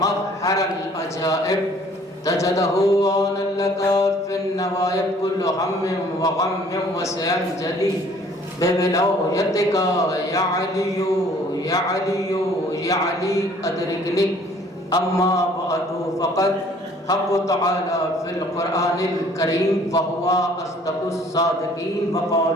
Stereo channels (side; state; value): both; normal; correlation 0.56